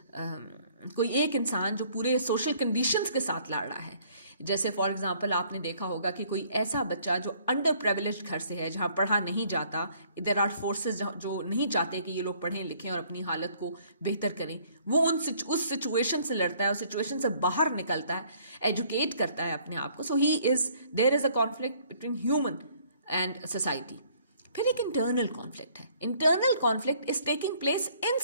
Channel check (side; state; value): both; inverted; correlation -0.61